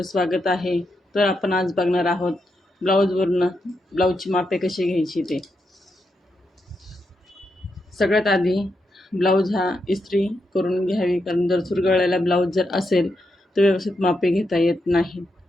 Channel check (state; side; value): normal; both; correlation 0.84